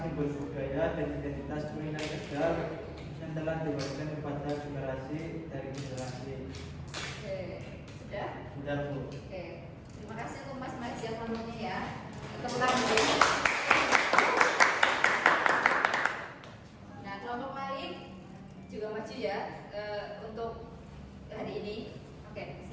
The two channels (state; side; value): identical; both; correlation 1.00